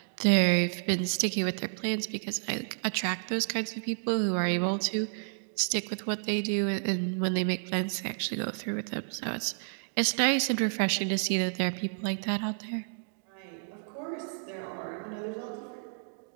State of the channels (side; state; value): left; silent; digital silence